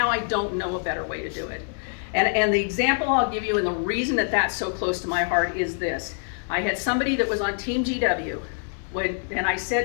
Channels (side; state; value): right; silent; 55 dB below the other